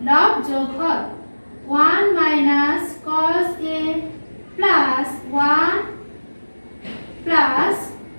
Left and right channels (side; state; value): both; inverted; correlation -1.00